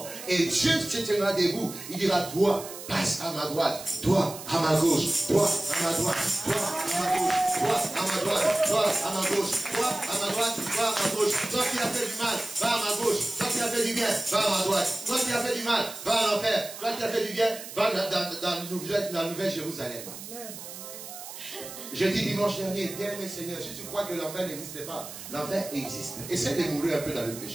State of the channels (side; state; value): right; noise; hiss, 12 dB below the sound